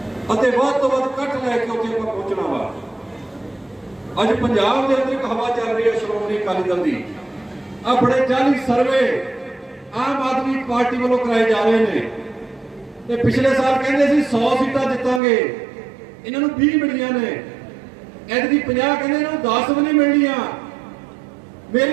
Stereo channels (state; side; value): drops out; left; at 15.2 s